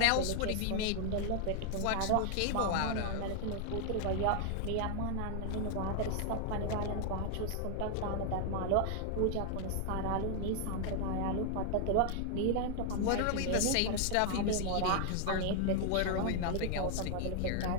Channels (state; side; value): different; both; correlation 0.00